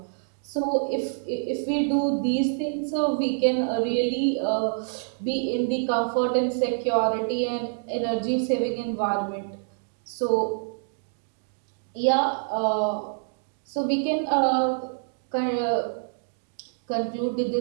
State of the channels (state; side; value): silent; left; digital silence